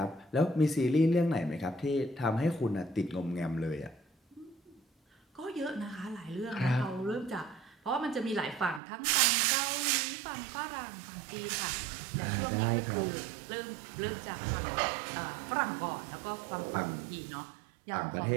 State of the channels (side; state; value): left; drops out; at 8.8 s